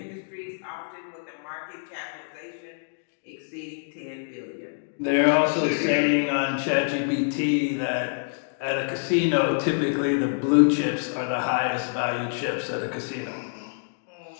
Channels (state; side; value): silent; right; digital silence